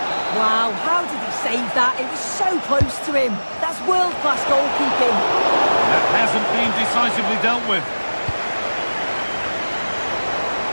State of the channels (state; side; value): inverted; both; correlation -1.00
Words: Wow, how did he save that? It was so close to him. That's world-class goalkeeping. That hasn't been decisively dealt with.